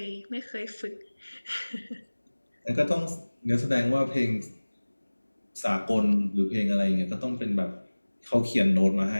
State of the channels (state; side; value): inverted; both; correlation -1.00